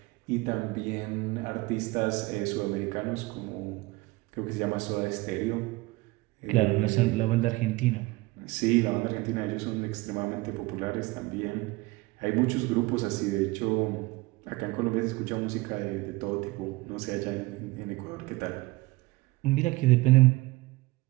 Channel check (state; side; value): quieter; left; 21.7 dB